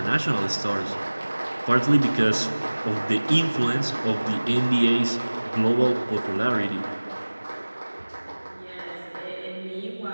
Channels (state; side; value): inverted; both; correlation -1.00